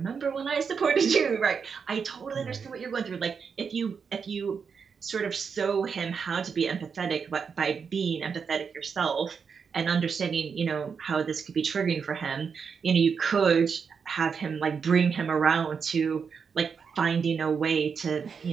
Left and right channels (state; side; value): quieter; left; 6.1 dB